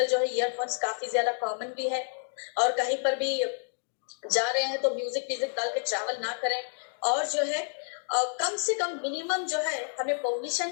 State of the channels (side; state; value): right; silent; 58 dB below the other